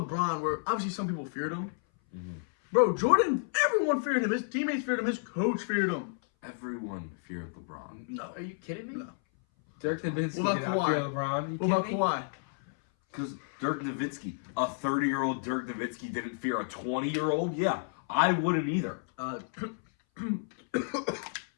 where obviously some people feared him. Mm-hmm. Bro, Jordan, everyone feared him. His teammates feared him. His coach feared him. Everyone feared LeBron. No. Are you kidding me? No. Dirk Nowitzki did not fear LeBron. What about Kawhi? Because Dirk Nowitzki, a 30-year-old Dirk Nowitzki didn't fear a 20-year-old? Yeah, I wouldn't either. 27.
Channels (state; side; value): silent; right; 57 dB below the other